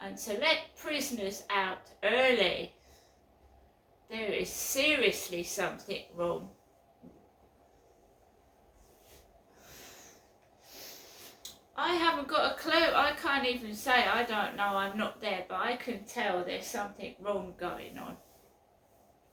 And to let prisoners out early, there is seriously something wrong. I haven't got a clue. I can't even say I don't know, I'm not there, but I can tell there's something wrong going on.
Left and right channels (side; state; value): both; identical; correlation 1.00